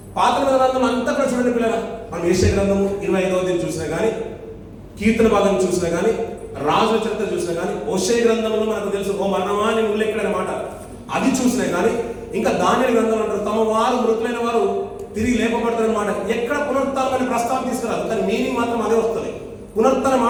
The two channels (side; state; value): both; identical; correlation 1.00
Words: పాత గ్రంథం అంతా కూడా చూడండి పిల్లల, మనం యెషయా గ్రంథము 25వ అధ్యాయం చూసినా కానీ, కీర్తన భాగం చూసినా కానీ, రాజుల చరిత్ర చూసినా కానీ, హోషేయ గ్రంథంలో మనకు తెలుసు ఓ మరణమా అని ఉల్లేఖన మాట అది చూసినా కానీ, ఇంకా దానియేలు గ్రంథం అంటారు తమ వారు మృతులైన వారు తిరిగి లేపబడతారన్నమాట. ఎక్కడ పునరుత్థానం అనే ప్రస్తావన తీసుకురాదు, కానీ మీనింగ్ మాత్రం అదే వస్తుంది. పునరుత్థాన